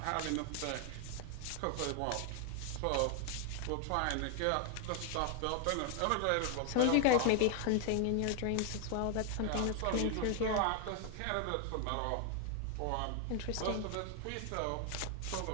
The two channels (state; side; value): different; both; correlation 0.00